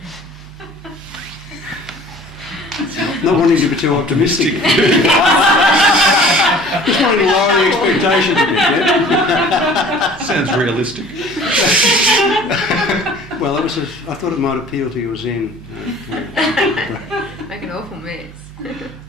Not wanting to be too optimistic. Just wanting to lower the expectations a bit, yeah? Sounds realistic. Well, I thought it might appeal to your Zen. Make an awful mess.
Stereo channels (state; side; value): normal; both; correlation 0.48